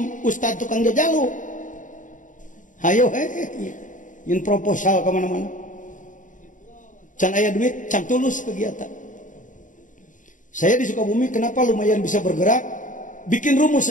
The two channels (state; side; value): late; right; 0.37 ms